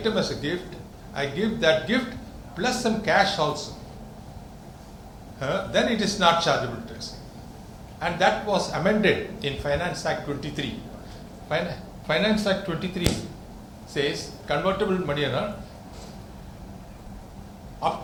as a gift, I give that gift plus some cash also, then it is not chargeable to tax. And that was amended in Finance Act 23. Finance Act 23 says convertible money, up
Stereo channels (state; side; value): identical; both; correlation 1.00